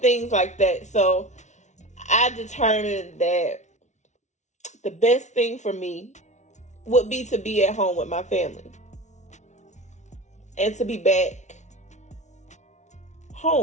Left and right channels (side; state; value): right; late; 0.34 ms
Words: things like that. So I determined that the best thing for me would be to be at home with my family and to be back